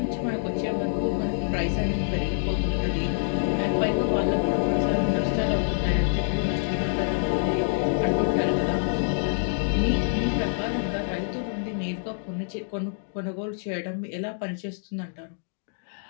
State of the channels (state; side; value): silent; right; digital silence